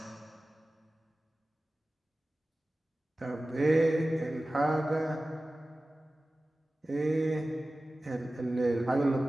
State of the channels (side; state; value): both; normal; correlation 0.96